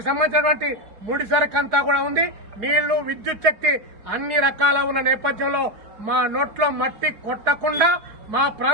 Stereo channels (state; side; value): late; left; 4.7 ms